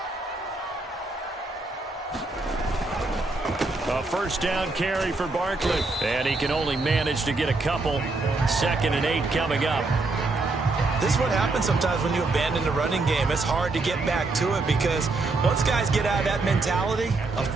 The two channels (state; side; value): quieter; left; 3.4 dB